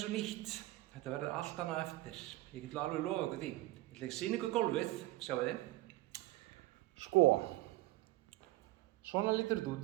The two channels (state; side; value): quieter; left; 18.2 dB